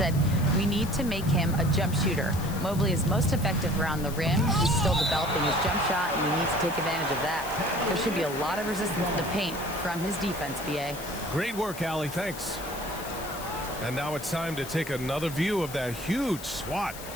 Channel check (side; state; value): left; noise; hiss, 13 dB below the sound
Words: we need to make him a jump shooter. Mobley is most effective around the rim. He's still developing his jump shot, and he needs to take advantage of that. There should be a lot of resistance in the paint from his defense, BA. Great work, Allie. Thanks. And now it's time to take another view of that huge swat.